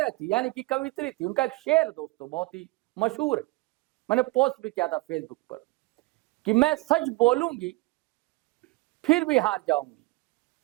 थी, यानी कि कवित्री थी। उनका एक शेर दोस्तों बहुत ही मशहूर है, मैंने पोस्ट भी किया था फेसबुक पर कि मैं सच बोलूंगी फिर भी हार जाऊंगी,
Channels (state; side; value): quieter; left; 22.7 dB